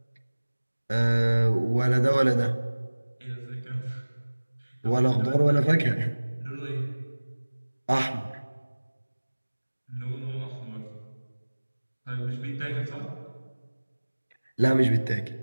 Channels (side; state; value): both; inverted; correlation -1.00